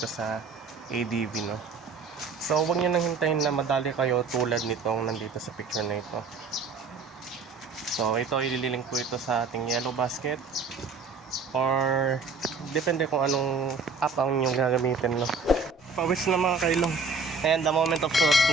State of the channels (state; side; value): quieter; left; 4.4 dB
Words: sa ADV, no? So huwag nyo nang hintayin na madali kayo tulad nitong nandito sa picture na ito. So ito, ililink ko ito sa ating yellow basket or depende kung anong app ang inyong gagamitin, no? Pawis na mga kailong. Ayan, the moment of truth